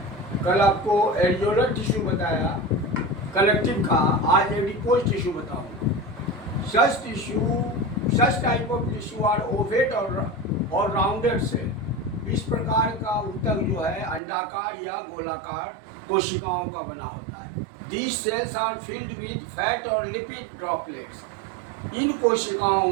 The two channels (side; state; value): left; drops out; at 14.2 s